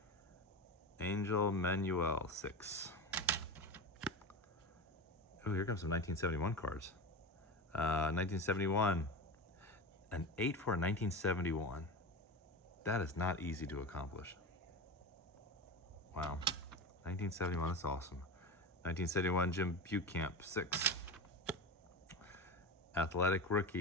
Angel Manuel, 6. Oh, here comes some 1971 cards. 1971, an 8 for a 1971. That is not easy to accomplish. Wow, 1971, that's awesome. 1971, Jim Bucamp, 6. Athletic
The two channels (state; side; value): normal; both; correlation 0.24